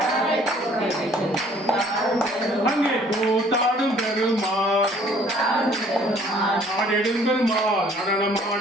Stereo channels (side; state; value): both; normal; correlation 0.58